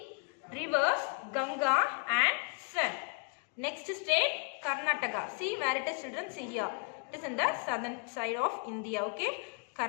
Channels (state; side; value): quieter; right; 38.6 dB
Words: Rivers Ganga and Sun. Next state Karnataka. See where it is children? See here. It is in the southern side of India. Okay,